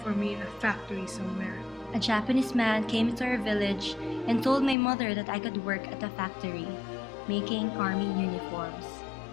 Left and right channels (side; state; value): right; drops out; at 4.8 s